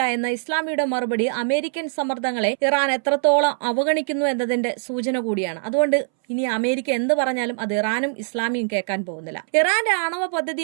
എന്ന ഇസ്ലാമിയുടെ മറുപടി അമേരിക്കൻ സമ്മർദ്ദങ്ങളെ ഇറാൻ എത്രത്തോളം അവഗണിക്കുന്നു എന്നതിന്റെ സൂചന കൂടിയാണ്. അതുകൊണ്ട് ഇനി അമേരിക്ക എന്ത് പറഞ്ഞാലും അത് ഇറാനും ഇസ്ലാമിയും കേൾക്കാൻ പോകുന്നില്ല. ഇറാന്റെ ആണവ പദ്ധതി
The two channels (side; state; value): left; silent; 64 dB below the other